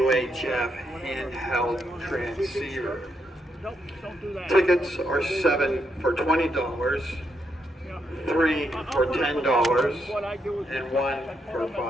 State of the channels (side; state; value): both; normal; correlation 0.80